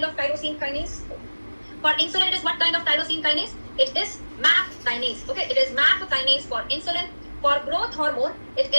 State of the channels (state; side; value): inverted; both; correlation -1.00